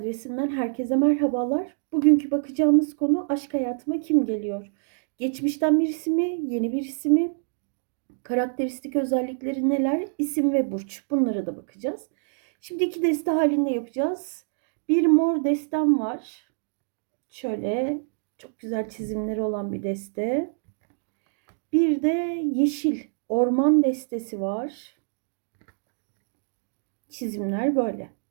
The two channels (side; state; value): left; silent; digital silence